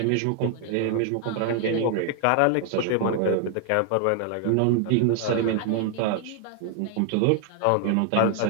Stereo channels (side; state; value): both; different; correlation 0.00